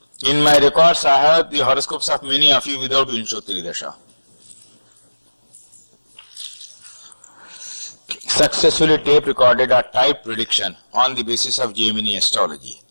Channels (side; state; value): both; inverted; correlation -1.00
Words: In my records, I have the horoscopes of many of you without Vinshotri Dasha. Successfully tape recorded a type prediction on the basis of Gemini astrology.